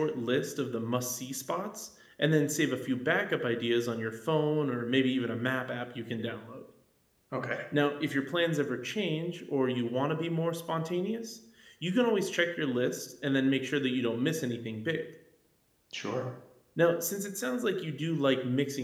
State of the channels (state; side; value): identical; both; correlation 1.00